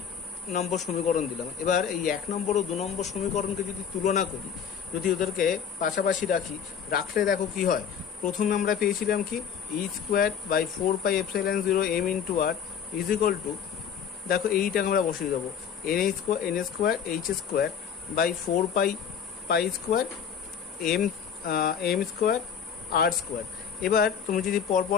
নম্বর সমীকরণ দিলাম। এবার এই 1 নম্বর ও 2 নম্বর সমীকরণকে যদি তুলনা করি, যদি ওদেরকে পাশাপাশি রাখলে দেখো কি হয়। প্রথমে আমরা পেয়েছিলাম কি e²/4πε0 m into r is equal to, দেখো এইটাকে আমরা বসিয়ে দেবো n²/4π² m² r²। এবার তুমি যদি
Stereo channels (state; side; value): quieter; right; 7.8 dB